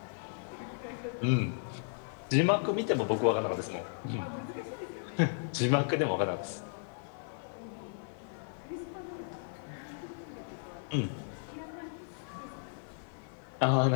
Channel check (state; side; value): silent; right; 55 dB below the other